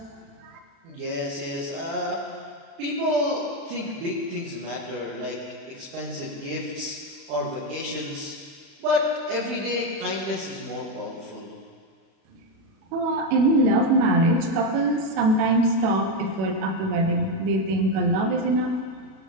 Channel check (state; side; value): late; left; 36 ms